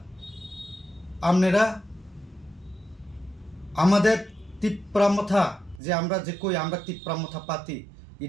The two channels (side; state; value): left; drops out; at 5.8 s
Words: আপনারা আমাদের তিপ্রামথা যে আমরা যে কই আমরা তিপ্রামথা পাতি